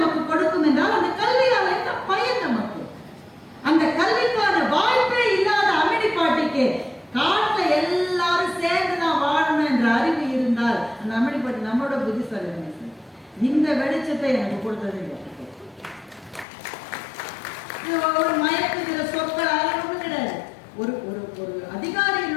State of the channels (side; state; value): right; drops out; at 16.4 s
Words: கொடுக்கும் என்றால், அந்த கல்வியால் என்ன பயன் நமக்கு? அந்த கல்விக்கான வாய்ப்பே இல்லாத அம்மினி பாட்டிக்கு காட்டுல எல்லாரும் சேர்ந்து நான் வாழணும் என்ற அறிவு இருந்தால், அந்த அம்மினி பாட்டி நம்மளோட புத்திசாலி. இந்த வெளிச்சத்தை எனக்கு கொடுத்தது ஒரு மயக்குகிற சொற்கள் ஒன்றும் கிடையாது. ஒரு ஒரு ஒரு